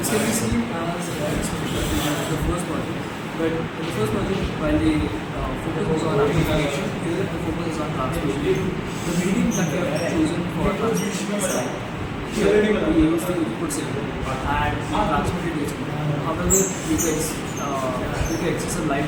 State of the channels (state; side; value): identical; both; correlation 1.00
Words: This can be seen as the first project, but in the first project, while the focus was on amplification, here the focus is on transmission. The medium that we have chosen for transmission is light. Here we use the input signal and we transmit it digitally. However, due to excessive light